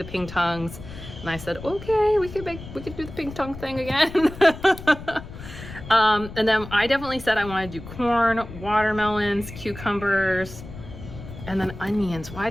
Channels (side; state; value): left; noise; rumble, 13 dB below the sound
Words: pink tongues, and I said okay, we could do the pink tongue thing again. And then I definitely said I want to do corn, watermelons, cucumbers, and then onions. Why